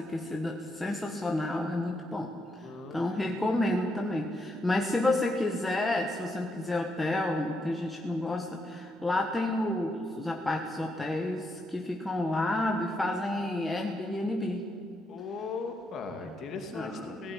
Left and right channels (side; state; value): both; normal; correlation 0.80